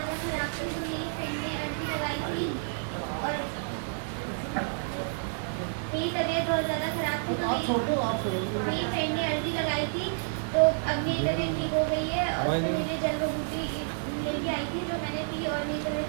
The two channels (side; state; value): left; silent; 58 dB below the other